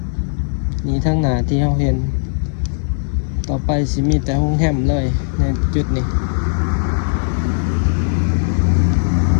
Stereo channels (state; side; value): silent; right; digital silence